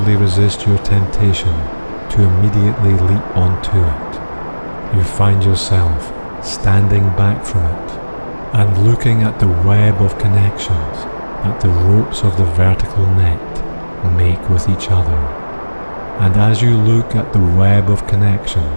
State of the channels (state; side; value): inverted; both; correlation -1.00